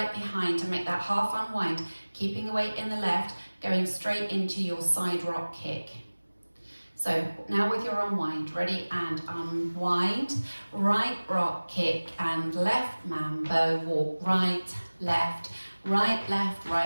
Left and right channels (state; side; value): inverted; both; correlation -1.00